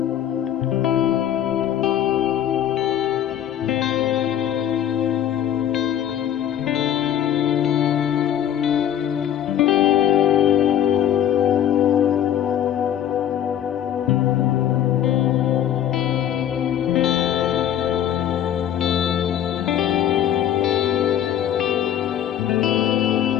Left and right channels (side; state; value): right; quieter; 10.5 dB